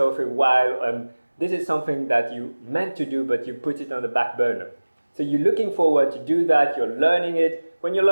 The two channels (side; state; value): both; inverted; correlation -1.00